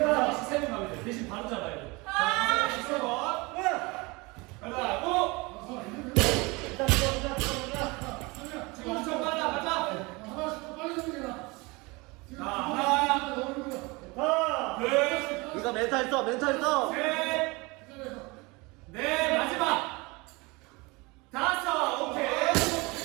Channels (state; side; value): quieter; left; 25.4 dB